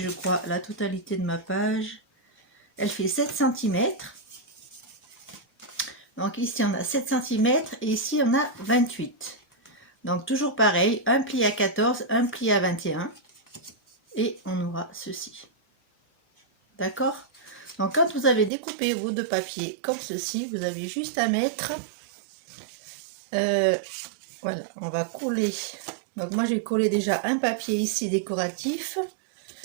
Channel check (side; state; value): left; drops out; at 18.5 s